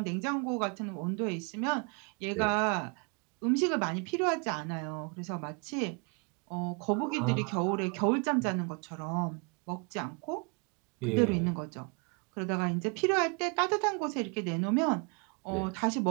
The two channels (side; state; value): left; quieter; 34.5 dB